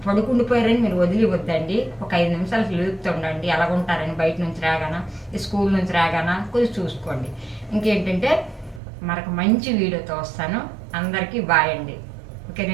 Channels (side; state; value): left; drops out; at 8.8 s